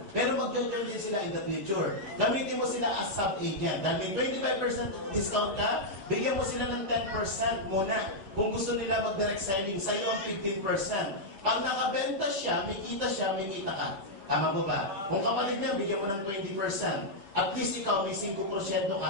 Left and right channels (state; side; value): late; left; 10 ms